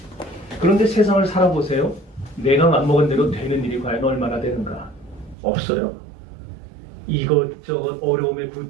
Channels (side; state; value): left; drops out; at 5.4 s